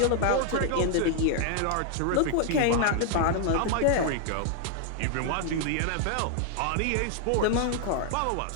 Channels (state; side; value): different; both; correlation 0.00